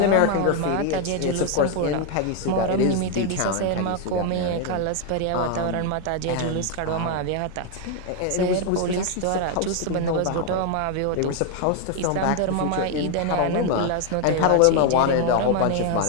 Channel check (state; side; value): different; both; correlation 0.01